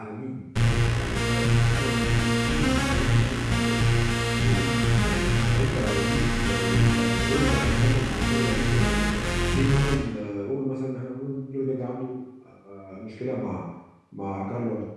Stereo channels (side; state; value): both; identical; correlation 1.00